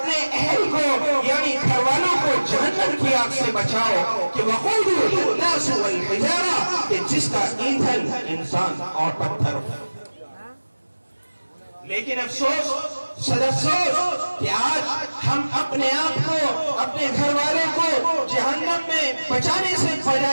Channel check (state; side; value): inverted; both; correlation -1.00